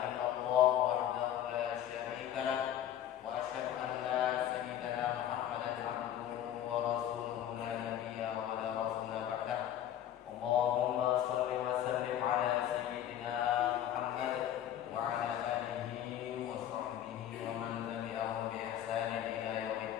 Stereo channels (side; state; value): right; quieter; 11.1 dB